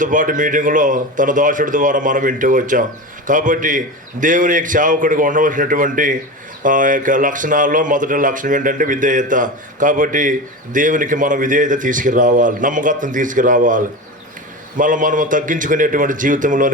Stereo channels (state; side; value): normal; both; correlation 0.26